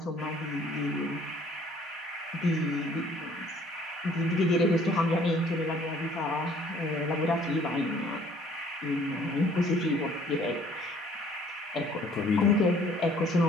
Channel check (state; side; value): normal; both; correlation 0.58